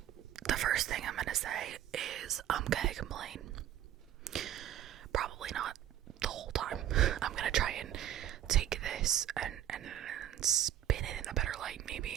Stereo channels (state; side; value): quieter; left; 11.6 dB